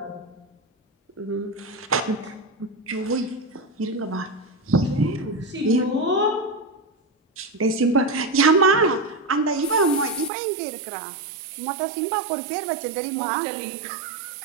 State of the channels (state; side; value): drops out; left; at 10.3 s